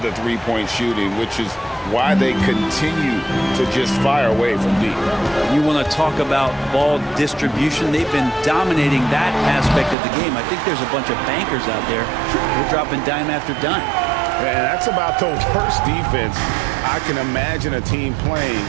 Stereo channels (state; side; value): drops out; left; at 10.0 s